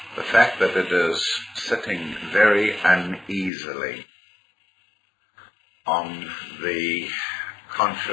the fact that it is sitting very uneasily on the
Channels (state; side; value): drops out; right; at 3.5 s